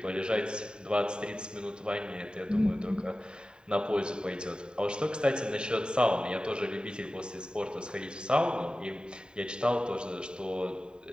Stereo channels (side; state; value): left; late; 0.048 ms